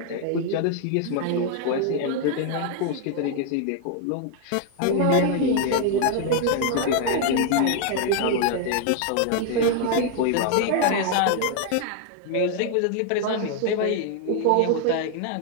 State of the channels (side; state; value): both; different; correlation 0.00